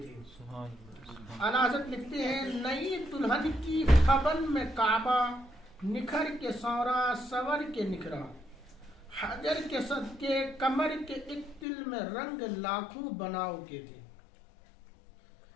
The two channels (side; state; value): right; drops out; at 11.7 s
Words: تھے۔ اعلیٰ حضرت لکھتے ہیں نئی دلہن کی خبن میں کعبہ، نکھر کے سورا سور کے نکھرا، حجر کے صدقے کمر کے ایک تل میں رنگ لاکھوں بناؤ کے تھے۔